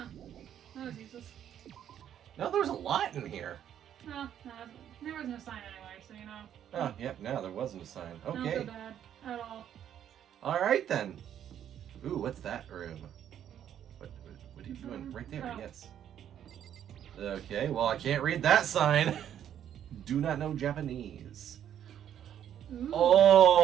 that was useless. No, there's a lot in here. No, there was no sign anyway, so you know. Oh, yep, no, there wasn't a sign. Don't Okay. feel bad at all. Alright then. Ooh, what's that room? What are you doing? Right there, Oh. yes. Okay, well, I can't read that sign. Do not know Japanese. Ooh.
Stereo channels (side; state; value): left; quieter; 10.0 dB